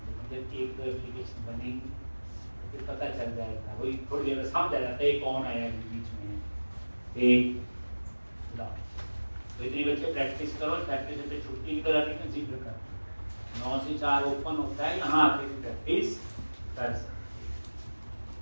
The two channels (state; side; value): inverted; both; correlation -1.00